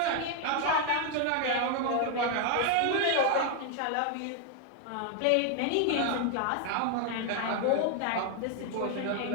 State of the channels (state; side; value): different; both; correlation 0.00